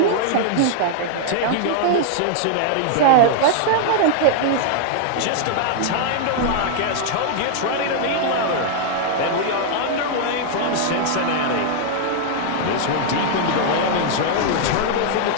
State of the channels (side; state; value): both; different; correlation 0.00